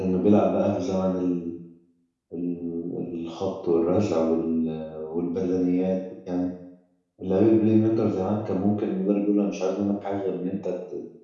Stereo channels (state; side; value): identical; both; correlation 1.00